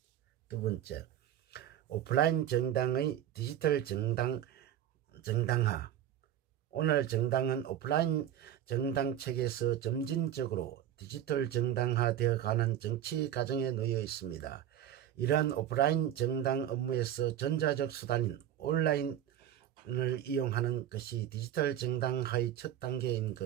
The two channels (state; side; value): quieter; left; 11.0 dB